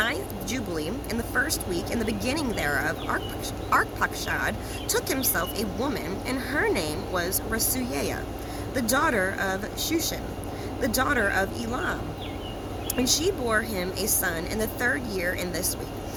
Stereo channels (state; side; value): identical; both; correlation 1.00